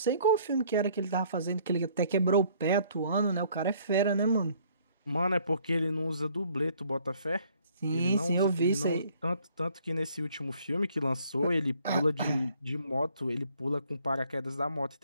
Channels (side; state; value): both; inverted; correlation -0.61